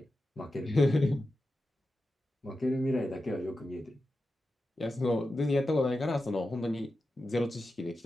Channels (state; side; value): normal; both; correlation 0.91